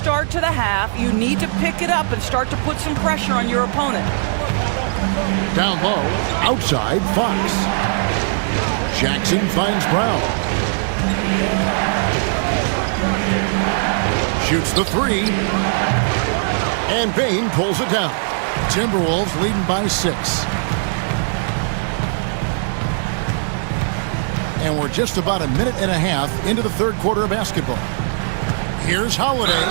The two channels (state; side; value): silent; left; digital silence